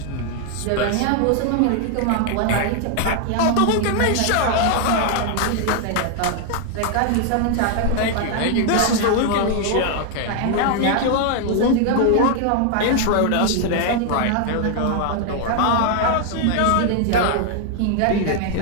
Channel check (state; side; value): different; both; correlation 0.00